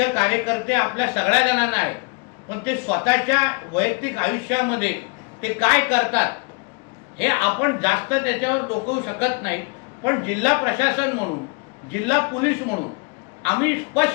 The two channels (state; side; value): quieter; right; 34.4 dB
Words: कार्यकर्ते आपल्या सगळ्या जणांना आहेत, पण ते स्वतःच्या वैयक्तिक आयुष्यामध्ये ते काय करतात हे आपण जास्त त्याच्यावर डोकवू शकत नाही। पण जिल्हा प्रशासन म्हणून, जिल्हा पोलीस म्हणून आम्ही